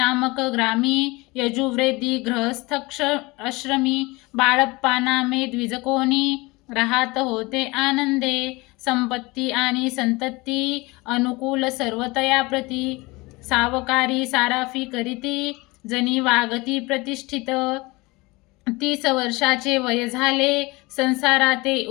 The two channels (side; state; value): right; quieter; 23.4 dB